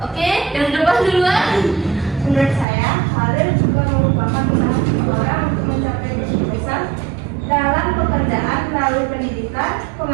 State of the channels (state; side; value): drops out; left; at 2.7 s